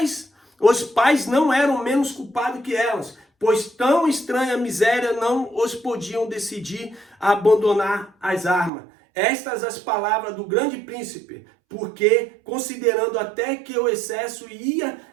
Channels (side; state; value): left; drops out; at 8.7 s